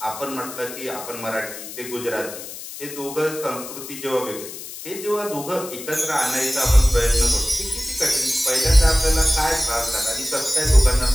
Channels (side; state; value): left; noise; hiss, 11 dB below the sound